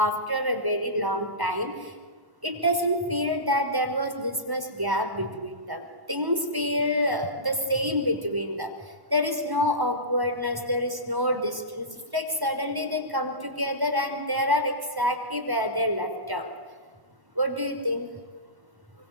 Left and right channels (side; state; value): left; late; 1.1 ms